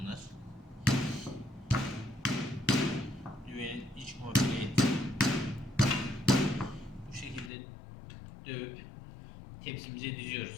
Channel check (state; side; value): drops out; right; at 7.5 s